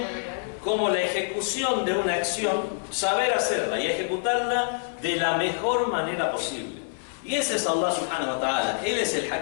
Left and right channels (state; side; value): silent; right; 61 dB below the other